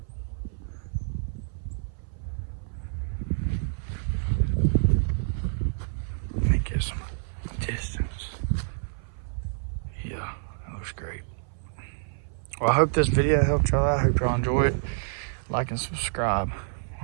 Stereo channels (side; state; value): left; silent; 57 dB below the other